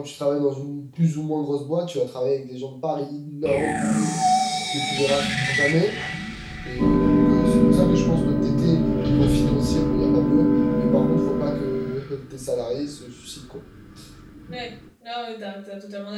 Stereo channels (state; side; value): identical; both; correlation 1.00